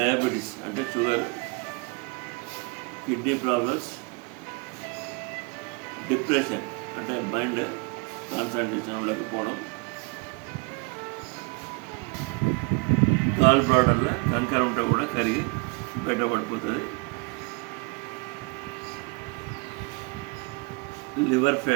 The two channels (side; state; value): left; quieter; 30.6 dB